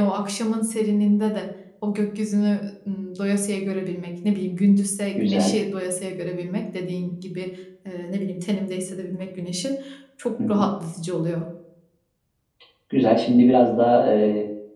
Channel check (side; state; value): both; identical; correlation 1.00